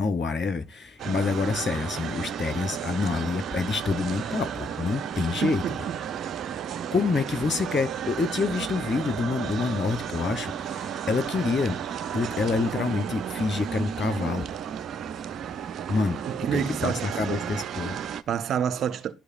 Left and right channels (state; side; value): normal; both; correlation 0.71